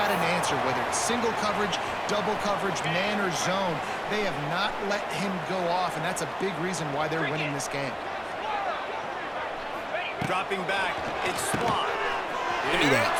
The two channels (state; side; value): identical; both; correlation 1.00